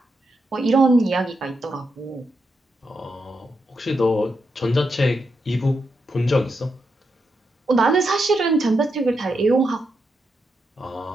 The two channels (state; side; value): normal; both; correlation 0.84